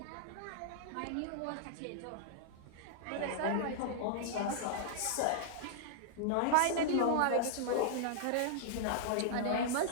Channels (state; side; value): different; both; correlation -0.01